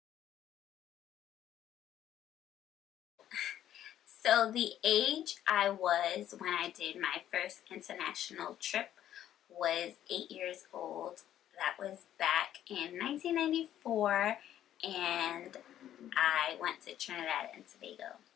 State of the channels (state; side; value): quieter; right; 11.4 dB